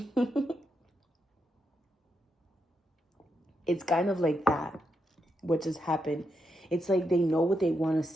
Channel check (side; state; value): both; normal; correlation 0.83